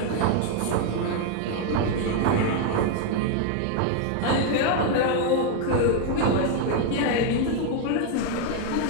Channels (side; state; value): both; different; correlation 0.01